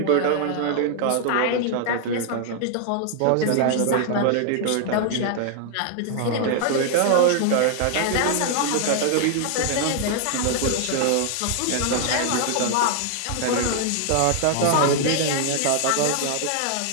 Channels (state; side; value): different; both; correlation 0.00